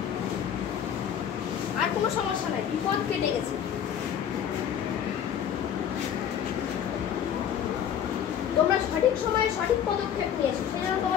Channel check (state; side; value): quieter; right; 9.1 dB